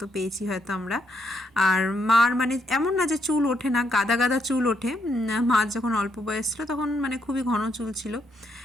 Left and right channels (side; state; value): both; normal; correlation 0.75